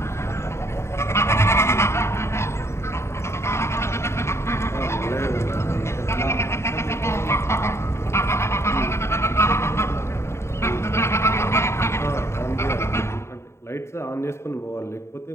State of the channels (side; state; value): right; late; 0.13 ms